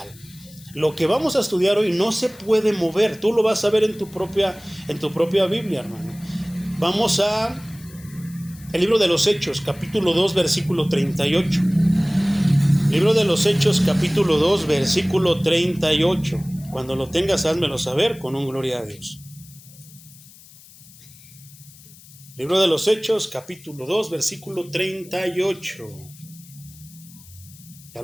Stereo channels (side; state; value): left; noise; hiss, 22 dB below the sound